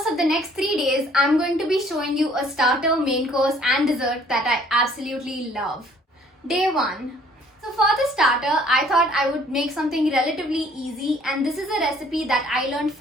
of the next 3 days, I'm going to be showing you a starter, main course and dessert that I absolutely love. Day 1. So for the starter, I thought I would make something relatively easy, and this is a recipe that I learned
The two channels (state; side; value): normal; both; correlation 0.59